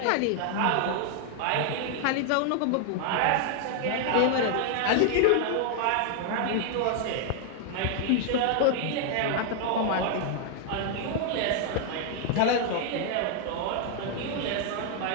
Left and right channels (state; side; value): different; both; correlation 0.00